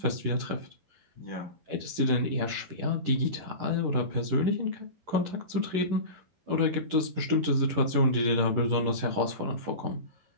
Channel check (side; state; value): left; late; 11 ms